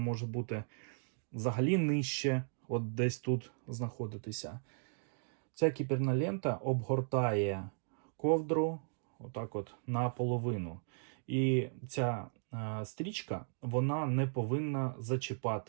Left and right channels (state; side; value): silent; left; digital silence